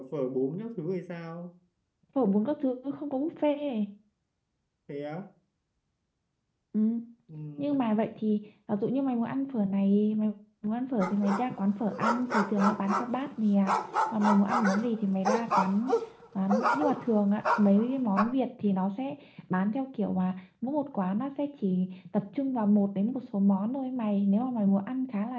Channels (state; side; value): identical; both; correlation 1.00